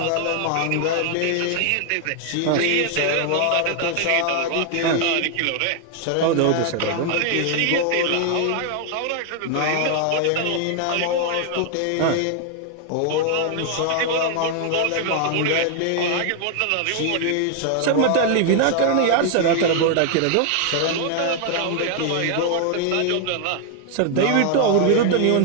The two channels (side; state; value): both; different; correlation 0.00